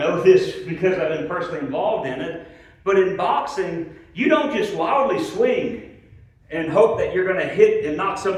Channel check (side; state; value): both; identical; correlation 1.00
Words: this because I've been personally involved in it, but in boxing, you don't just wildly swing and hope that you're going to hit and knock